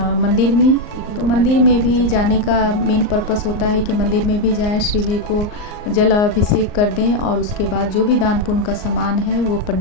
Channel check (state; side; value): late; right; 38 ms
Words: मंदिर में, तो मंदिर में भी जाने का मेन पर्पस होता है कि मंदिर में भी जाएं, शिव जी को जल अभिषेक कर दें और उसके बाद जो भी दान पुण्य का सामान है वो